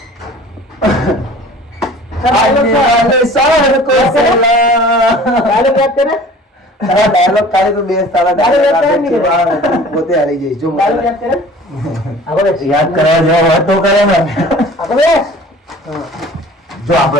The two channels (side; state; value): both; normal; correlation 0.46